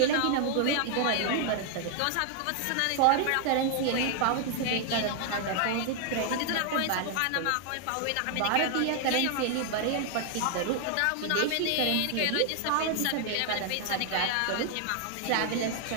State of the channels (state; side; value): different; both; correlation 0.00